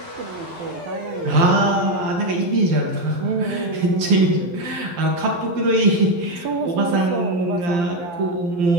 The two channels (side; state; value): left; late; 12 ms